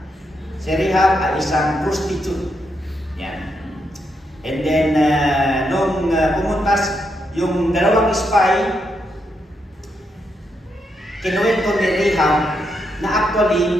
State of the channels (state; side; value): normal; both; correlation 0.81